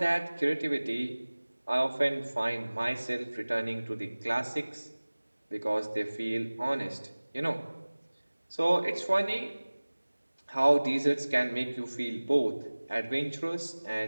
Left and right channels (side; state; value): both; inverted; correlation -1.00